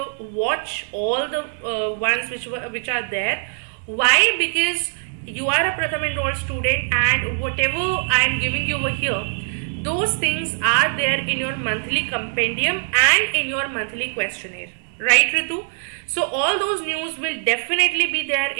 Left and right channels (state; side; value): silent; left; digital silence